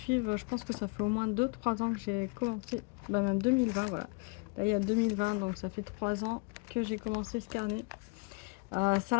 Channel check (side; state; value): right; quieter; 32.5 dB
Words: je pense que ça fait au moins 2-3 ans que j'ai commencé, bah même 2020, voilà. Là, il y a 2020, donc ça fait 3 ans que j'ai commencé ce carnet. Ça,